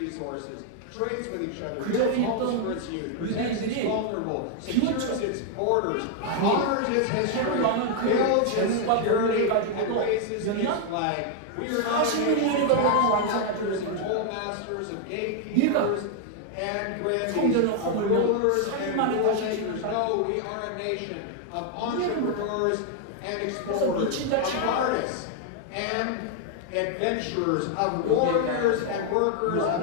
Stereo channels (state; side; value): different; both; correlation 0.00